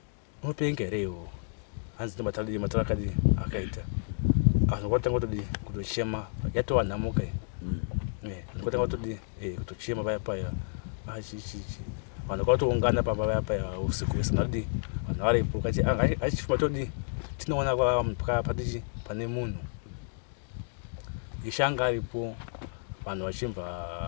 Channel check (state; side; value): silent; right; digital silence